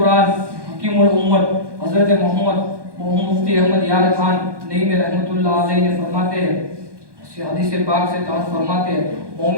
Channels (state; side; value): late; left; 1.2 ms